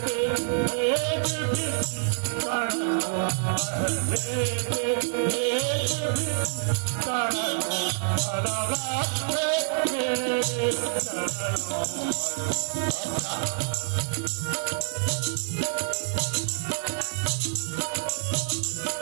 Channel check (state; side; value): silent; left; 60 dB below the other